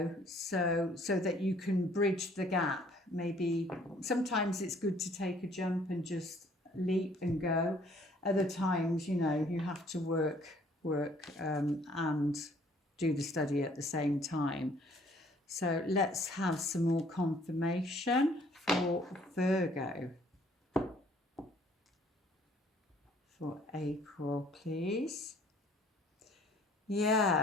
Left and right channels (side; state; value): both; normal; correlation 0.59